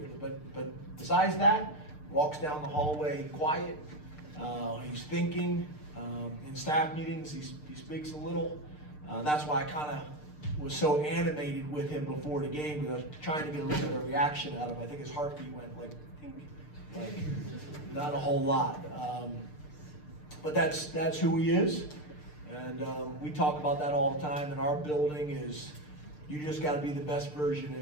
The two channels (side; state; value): right; late; 6.7 ms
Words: But besides that, walks down the hallway quiet. He's thinking. In staff meetings, he speaks a little. That's why I kind of was so animated with him before the game, because I was trying to get a little bit of reaction out of him. I think his heartbeat went like, ding, like not a whole lot. But that's who he is. And we talk about that all the time in our building. Is you just got to be the best version